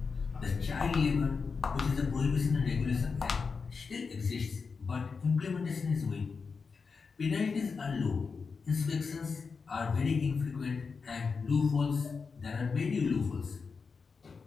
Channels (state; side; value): quieter; right; 5.1 dB